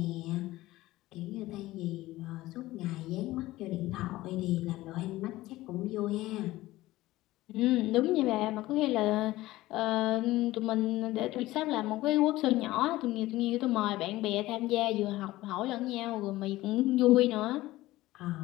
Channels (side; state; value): right; quieter; 17.3 dB